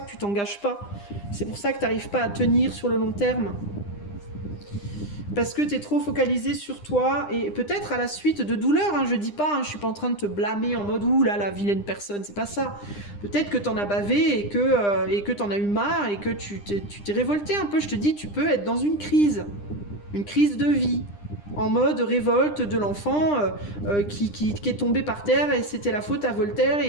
tu t'engages pas. C'est pour ça que tu n'arrives pas à tenir sur le long terme. Parce que tu es trop focalisé sur toi et peut-être à la suite de douleurs, hein, je dis pas, hein, je suis pas en train de te blâmer en mode ouh là la vilaine personne, c'est pas ça. Peut-être que t'en as bavé et que t'en as eu marre et que tu t'es révolté un peu. Je te dis, tu peux être dans une crise de vie, en mode révolte de l'enfant qui est tombé par terre et c'était la faute à Voltaire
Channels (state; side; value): late; right; 9.9 ms